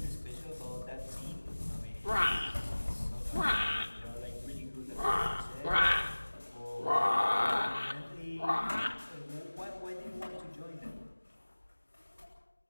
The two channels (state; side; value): inverted; both; correlation -1.00